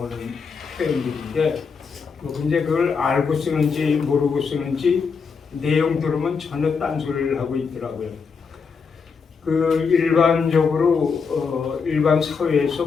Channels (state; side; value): quieter; right; 5.5 dB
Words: 표현들인데, 근데 그걸 알고 쓰는지 모르고 쓰는지 내용 들으면 전혀 딴소리를 하고 있더라고요. 그 일반적으로 일반